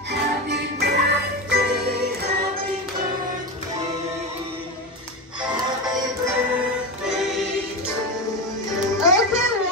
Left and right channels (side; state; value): both; normal; correlation 0.19